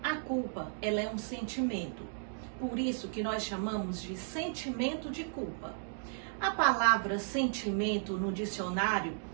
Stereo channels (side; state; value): left; silent; digital silence